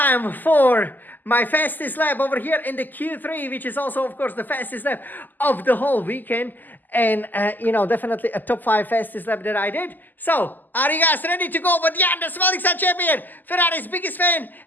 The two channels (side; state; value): right; late; 0.087 ms